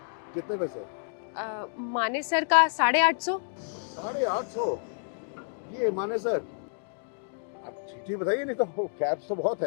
कितने पैसे? मानेसर का 850। 850? ये मानेसर आप ठीक बताइए, नहीं तो कैब्स तो बहुत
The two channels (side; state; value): right; silent; digital silence